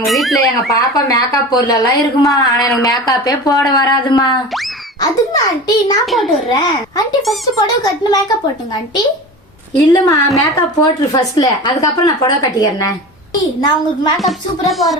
வீட்டுல எங்க பாப்பா மேக்கப் பொருள் எல்லாம் இருக்குமா, ஆனா எனக்கு மேக்கப்பே போட வராதுமா. அதுக்கு ஆண்டி நான் போட்டு விடுறேன். ஆண்டி ஃபர்ஸ்ட் புடவை கட்டின மேக்கப் போட்டுங்க. ஆண்டி இல்லம்மா மேக்கப் போட்டுரு ஃபர்ஸ்ட்ல, அதுக்கப்புறம் நான் புடவை கட்டிக்கிறேன். நான் உங்களுக்கு மேக்கப் சூப்பரா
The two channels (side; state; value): both; normal; correlation 0.32